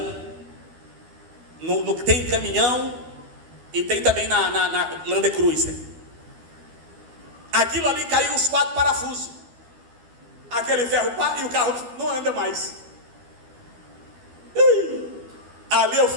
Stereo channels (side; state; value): left; late; 12 ms